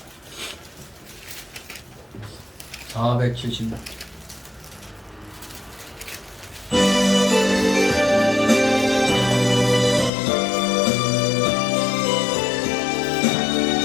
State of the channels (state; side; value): drops out; right; at 10.1 s